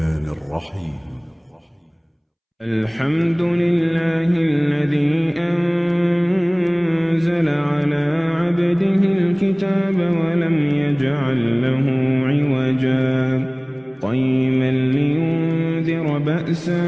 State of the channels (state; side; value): identical; both; correlation 1.00